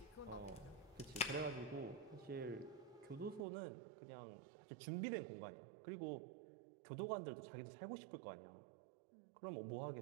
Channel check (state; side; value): drops out; left; at 3.5 s